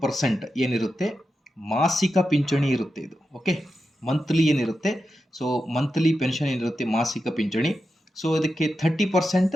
ಏನಿರುತ್ತೆ ಮಾಸಿಕ ಪಿಂಚಣಿ ಇರುತ್ತೆ. ಇದು ಓಕೆ, ಮಂತ್ಲಿ ಏನಿರುತ್ತೆ, ಸೊ ಮಂತ್ಲಿ ಪೆನ್ಷನ್ ಏನಿರುತ್ತೆ ಮಾಸಿಕ ಪಿಂಚಣಿ. ಸೊ ಇದಕ್ಕೆ 30%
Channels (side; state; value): both; normal; correlation 0.89